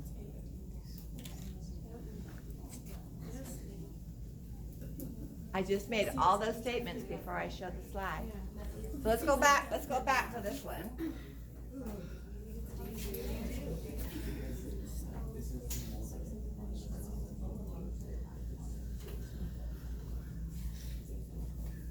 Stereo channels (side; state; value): both; identical; correlation 1.00